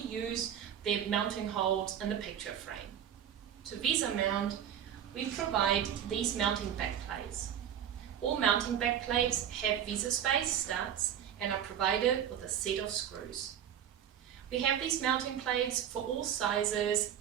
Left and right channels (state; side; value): quieter; left; 9.6 dB